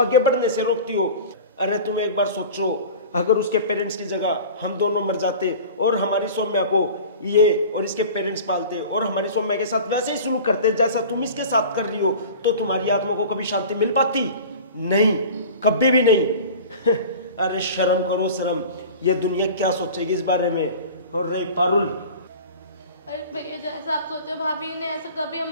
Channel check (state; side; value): inverted; both; correlation -0.38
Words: बढ़ने से रोकती हो। अरे तुम एक बार सोचो, अगर उसके पेरेंट्स की जगह हम दोनों मर जाते और हमारी सौम्या को ये और इसके पेरेंट्स पालते और हमारी सौम्या के साथ वैसे ही शुरू करते जैसा तुम इसके साथ कर रही हो, तो तुम्हारी आत्मा को कभी शांति मिल पाती? नहीं, कभी भी नहीं। अरे शर्म करो शर्म, ये दुनिया क्या सोचेगी इस बारे में? और रही पारुल, अरे भैया जैसा आप सोचो, भाभी ने ऐसा कभी